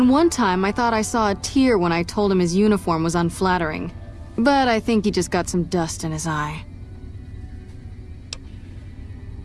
one time I thought I saw a tear when I told him his uniform was unflattering. But I think he just got some dust in his eye.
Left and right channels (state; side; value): identical; both; correlation 1.00